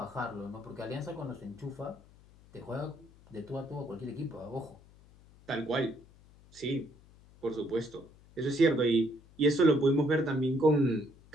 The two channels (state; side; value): noise; left; hum, 25 dB below the sound